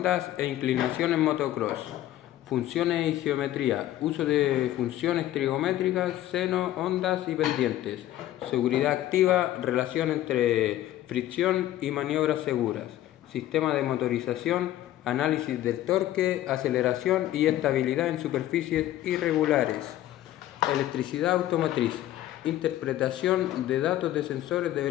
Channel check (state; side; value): quieter; right; 13.8 dB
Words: e inclinación en motocross. Funciones y geometría. Uso de funciones trigonométricas, seno, ondas y pendientes. Seguridad activa, relación entre fricción y maniobras seguras. Sistema de motorización, análisis del torque, aceleración y estabilidad en superficies irregulares. Electricidad automotriz. Interpretación de datos de sensores de